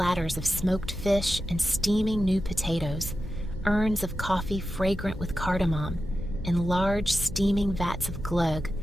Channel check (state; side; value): normal; both; correlation 0.91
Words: of smoked fish and steaming new potatoes, urns of coffee fragrant with cardamom, and large steaming vats of glögg,